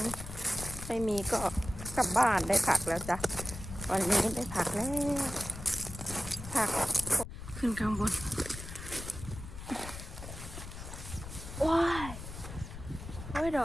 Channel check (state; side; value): noise; left; rumble, 10 dB below the sound